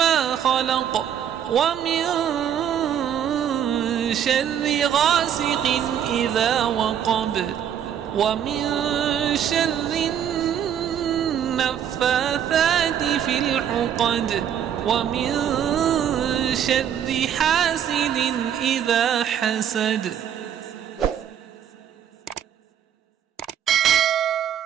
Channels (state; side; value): quieter; left; 9.4 dB